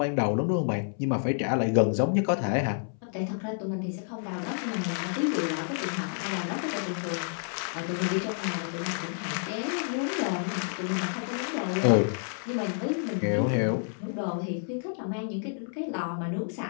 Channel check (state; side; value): silent; right; 58 dB below the other